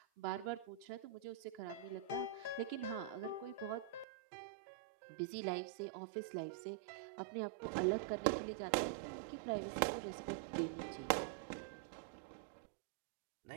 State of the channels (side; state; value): left; drops out; at 4.0 s